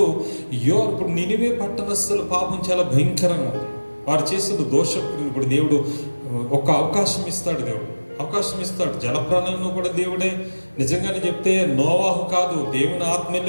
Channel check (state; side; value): inverted; both; correlation -1.00